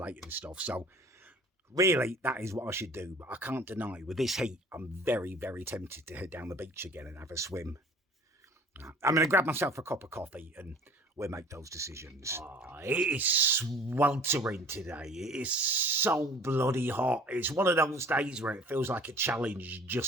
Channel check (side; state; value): both; normal; correlation 0.48